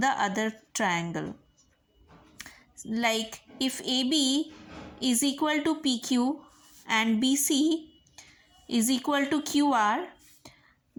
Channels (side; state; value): both; identical; correlation 1.00